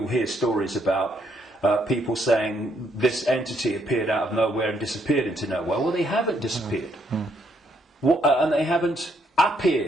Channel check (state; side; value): normal; both; correlation 0.73